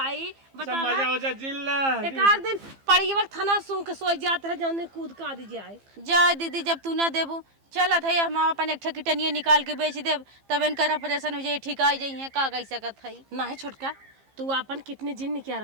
सब मजा हो जा जिल्ला। एक आध दिन पड़ी वक्त थाना सूंघ के सोच जात रहे, जौने कूद का दी जाए। जा दीदी जब तू ना देबू चलत है, हम अपन एक ठकिटनिया निकाल के बेच देब, तब इनकर ऑपरेशन हो जाए, ठीक आ जाइए, का कह सकत है। ना है छोटका, तू अपन कितने जिन क्या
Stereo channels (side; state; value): left; late; 15 ms